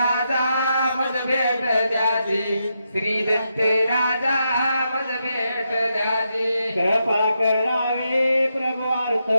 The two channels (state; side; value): inverted; both; correlation -0.83